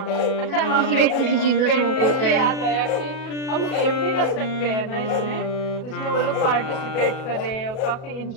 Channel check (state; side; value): late; right; 37 ms